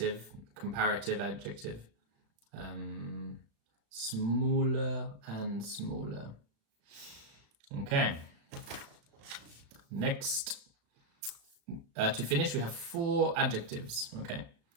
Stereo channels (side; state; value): left; late; 36 ms